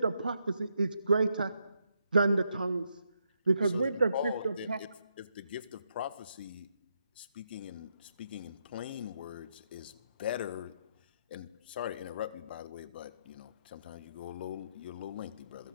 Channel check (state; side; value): inverted; both; correlation -0.79